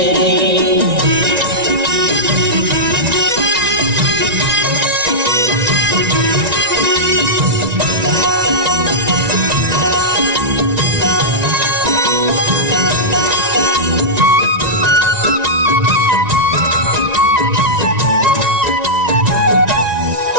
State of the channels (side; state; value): left; late; 1.9 ms